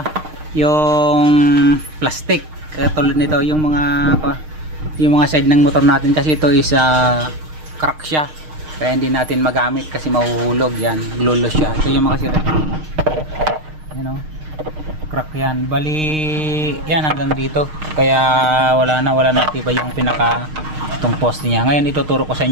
yung plastic. Katulad nito yung mga side ng motor natin kasi ito is crack siya. Kaya hindi natin magamit kasi mahuhulog yan, naglulos siya. Ito yung mga kachiret. Yan o. Crack yan. Bali yan hanggang dito. Kaya wala na tiba yung pinaka itong post niya. Ngayon ituturo ko sa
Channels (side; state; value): left; late; 6.5 ms